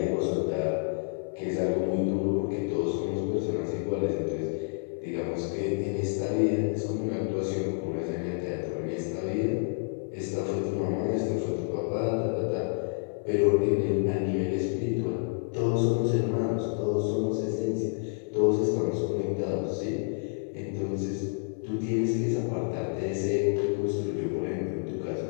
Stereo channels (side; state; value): right; silent; 59 dB below the other